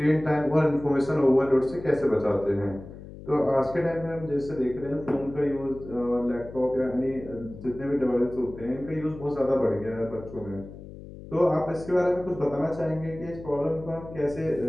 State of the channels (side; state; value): left; noise; hum, 15 dB below the sound